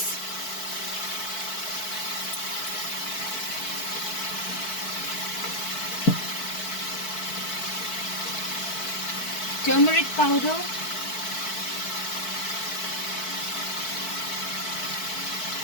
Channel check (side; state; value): right; late; 4.6 ms